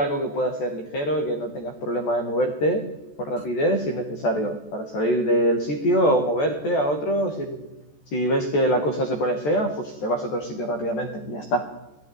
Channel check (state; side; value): late; right; 14 ms